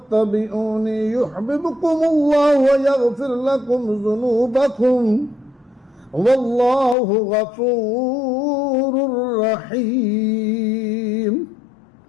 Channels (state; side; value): drops out; right; at 7.0 s